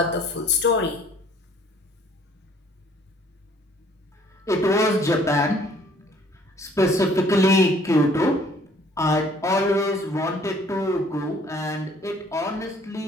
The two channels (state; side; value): normal; both; correlation 0.58